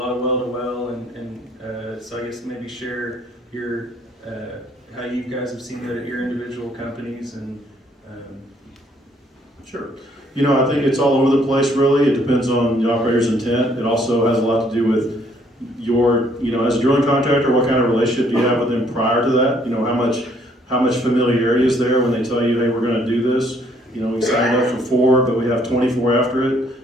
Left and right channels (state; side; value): normal; both; correlation 0.65